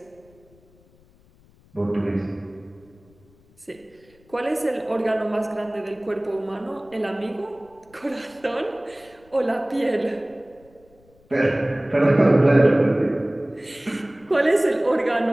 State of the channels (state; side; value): noise; left; rumble, 29 dB below the sound